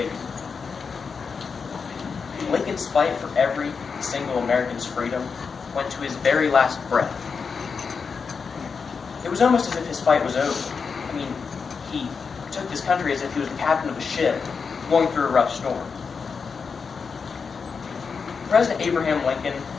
Lincoln's fight for every single American's freedom went to his very last breath. It was almost as if his fight was over. He took this country as if he was the captain of a ship going through a rough storm. President Abraham Lincoln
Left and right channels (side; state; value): right; quieter; 5.5 dB